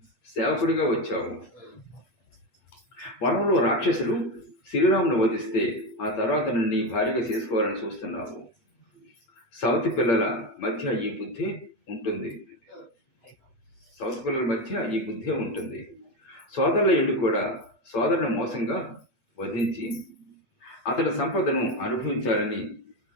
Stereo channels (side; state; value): right; late; 8.8 ms